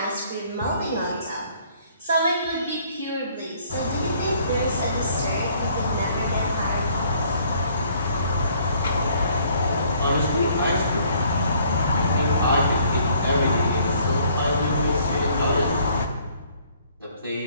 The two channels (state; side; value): inverted; both; correlation -0.61